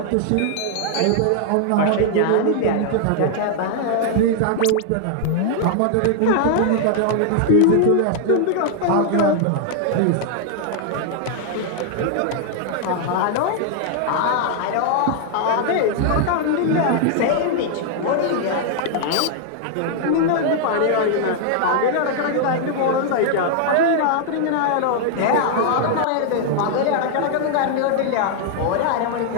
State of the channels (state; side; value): different; both; correlation 0.00